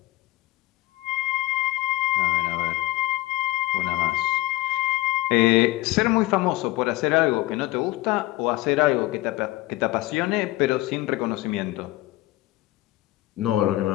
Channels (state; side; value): quieter; right; 18.4 dB